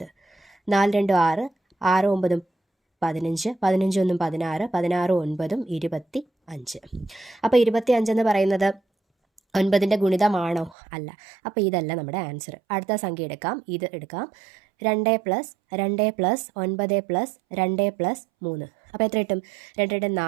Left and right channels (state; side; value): drops out; left; at 10.8 s